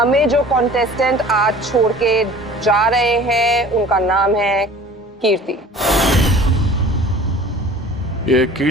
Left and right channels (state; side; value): normal; both; correlation 0.45